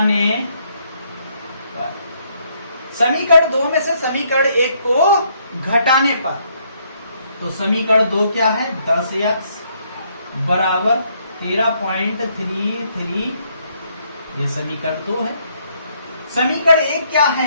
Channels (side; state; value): both; inverted; correlation -0.70